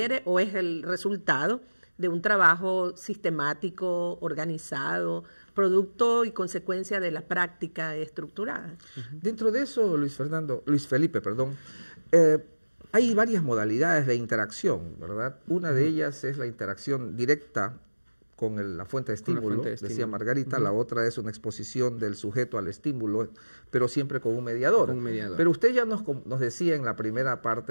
o es el resultado de un trabajo sistemático, organizado, producto y consecuencia de la práctica estructurada. Dentro de eso, Luis Felipe, hay varias modalidades de interacción, ¿verdad? Una de ellas es la interacción directa con la fuente de estímulo, decía Margarita. La otra es una exposición del sujeto al estímulo, pero siempre con un mediador. Pero usted ya nos decía en la primera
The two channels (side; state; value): both; inverted; correlation -1.00